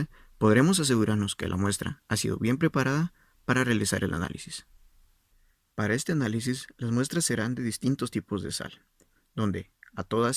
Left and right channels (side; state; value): both; identical; correlation 1.00